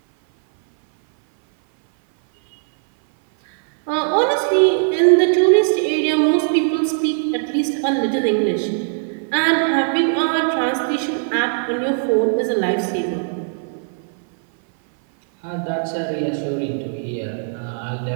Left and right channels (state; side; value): silent; left; 59 dB below the other